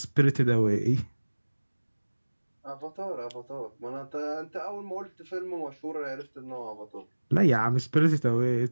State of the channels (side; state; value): both; inverted; correlation -1.00